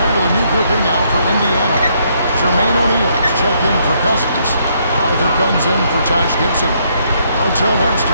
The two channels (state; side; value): inverted; both; correlation -0.71